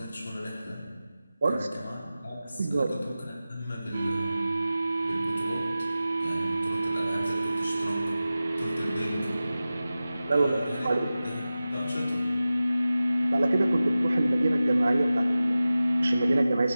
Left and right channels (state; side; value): inverted; both; correlation -0.95